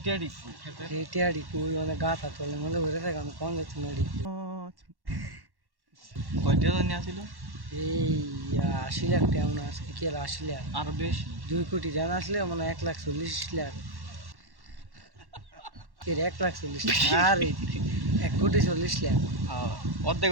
ডিকু খেতে এই টিয়া ডিকু মানে গাথা তোলে মনে হয়ে থাকে আমি কোন যাচ্ছি না ডিকু কয়টা জানি আছিল এই ৮০ লাখ টাকা মনে আজকে কি আর ৮০ লাখ আরো বেশি 2 কোটি টাকা আসলে মানে ১,৪০,০০,০০০ এর ১,৪০,০০০ আর ১,৪০,০০,০০০ অর্ধেক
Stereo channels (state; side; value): late; left; 1.1 ms